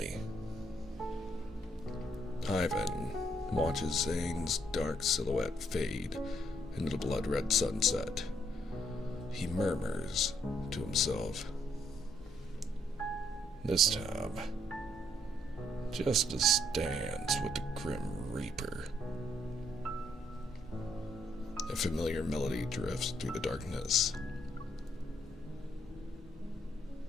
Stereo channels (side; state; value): both; normal; correlation 0.71